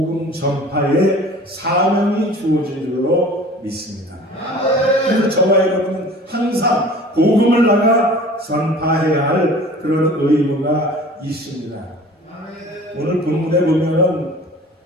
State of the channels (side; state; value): both; normal; correlation 0.44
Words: 전파에 사명이 주어진 줄로 믿습니다. 그래서 저와 여러분은 항상 복음을 나가 전파해야 할 그런 의무가 있습니다. 오늘 본문에 보면은